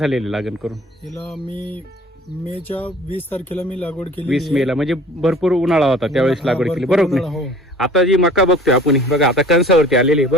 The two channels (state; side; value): normal; both; correlation 0.47